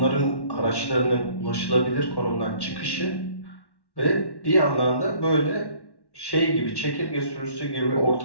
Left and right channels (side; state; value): right; late; 1.1 ms